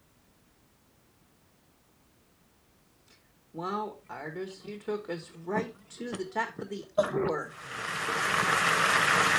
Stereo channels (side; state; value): both; identical; correlation 1.00